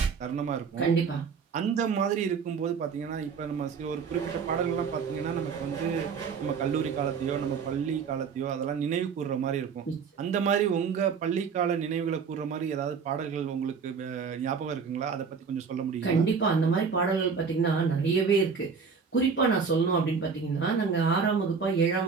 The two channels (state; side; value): quieter; left; 5.8 dB